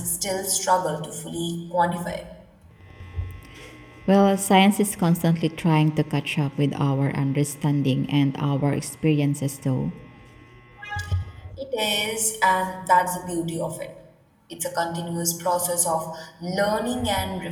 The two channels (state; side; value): identical; both; correlation 1.00